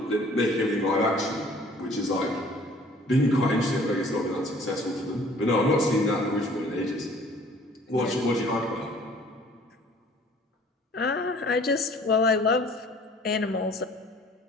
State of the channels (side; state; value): both; normal; correlation 0.53